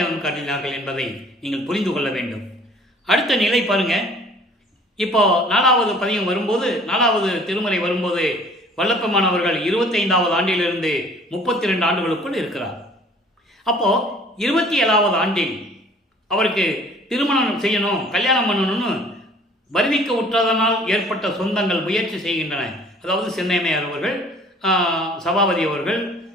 காட்டினார்கள் என்பதை நீங்கள் புரிந்து கொள்ள வேண்டும். அடுத்த நிலை பாருங்க. இப்போ 4வது பதிகம் வரும்போது, 4வது திருமுறை வரும்போது வல்லப்பெருமானவர்கள் 25வது ஆண்டிலிருந்து 32 ஆண்டுகளுக்குள் இருக்கிறார். அப்போது 27வது ஆண்டில் அவருக்கு திருமணம் செய்யணும், கல்யாணம் பண்ணணும்னு வருவிக்க உற்றதனால் ஏற்பட்ட சொந்தங்கள் முயற்சி செய்கின்றன. அதாவது சென்னையம்மையார் அவர்கள், சபாபதி அவர்கள்,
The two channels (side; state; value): both; normal; correlation 0.53